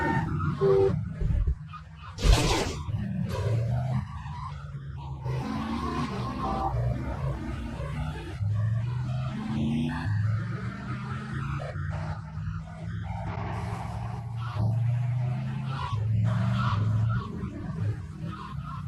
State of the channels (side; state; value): both; identical; correlation 1.00